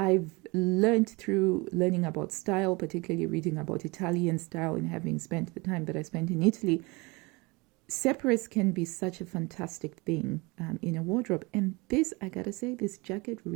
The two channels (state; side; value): quieter; left; 25.7 dB